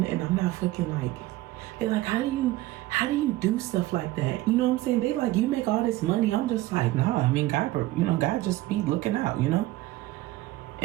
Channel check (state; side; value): quieter; left; 17.3 dB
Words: And I'm not fucking like, they're like, how do you do stuff like that? You know what I'm saying? They like, you make all this money. I'm just like, nah, I mean, God, you know, God just be looking out, you know?